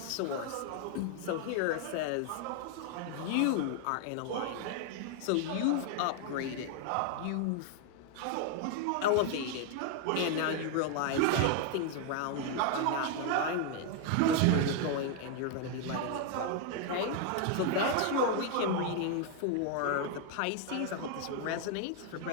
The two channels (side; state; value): both; different; correlation 0.00